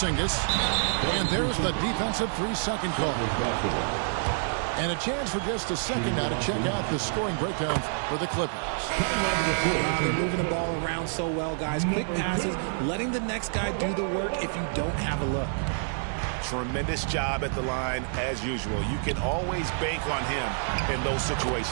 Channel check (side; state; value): left; silent; digital silence